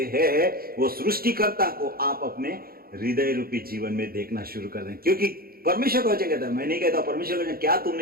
हैं, वो सृष्टिकर्ता को आप अपने हृदय रूपी जीवन में देखना शुरू कर दें। क्योंकि परमेश्वर का वचन कहता है, मैं नहीं कहता, परमेश्वर का वचन, क्या तुम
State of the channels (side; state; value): left; late; 0.43 ms